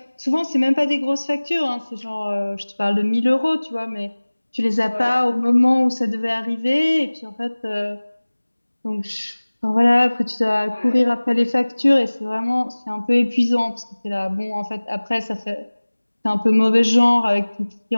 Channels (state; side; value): inverted; both; correlation -1.00